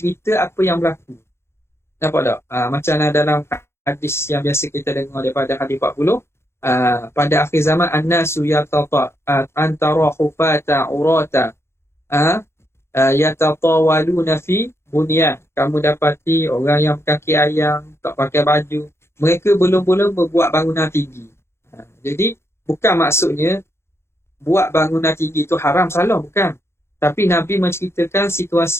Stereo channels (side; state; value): right; late; 0.12 ms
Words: apa yang berlaku. Nampak tak? Macam dalam hadis yang biasa kita dengar daripada hadis 40. Pada akhir zaman an-nasu yatata antara hufata urata yatatawaluna fi bunyan. Kamu dapati orang yang kaki ayam, tak pakai baju, mereka belum-belum berbuat bangunan tinggi. Jadi bukan maksudnya buat bangunan tinggi itu haram, salah, bukan. Tapi Nabi menceritakan